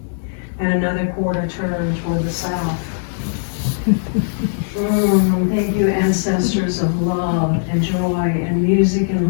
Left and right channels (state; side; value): silent; right; 67 dB below the other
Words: And another quarter turn toward the south. Thank you, ancestors of love and joy and music and